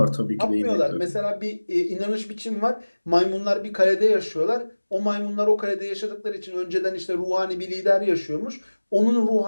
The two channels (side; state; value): both; inverted; correlation -1.00